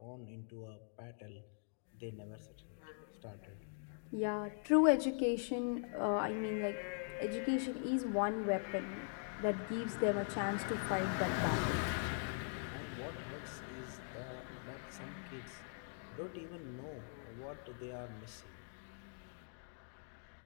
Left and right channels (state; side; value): silent; right; digital silence